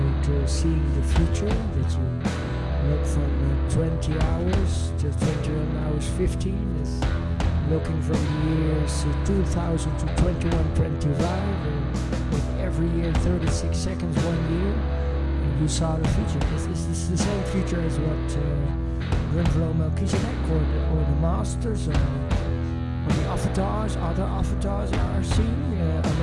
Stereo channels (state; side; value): identical; both; correlation 1.00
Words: seeing the future, that you look from 20 hours to 21 hours 15 as looking from the years 2000 to 2125, with every year 36 seconds, 1 year, and you saw the future. Is this the same future as what Drunvalo Melchizedek or the Masters or the avatars, other avatars are seeing?